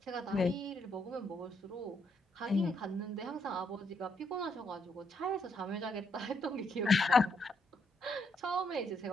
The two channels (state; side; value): normal; both; correlation 0.75